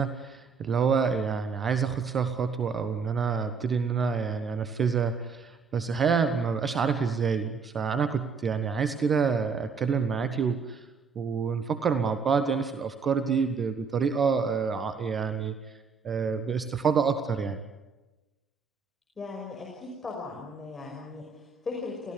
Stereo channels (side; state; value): left; quieter; 5.4 dB